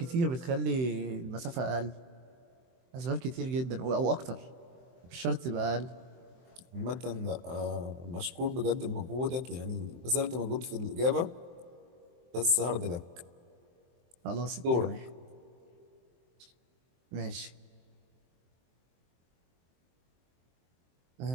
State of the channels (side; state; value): left; late; 23 ms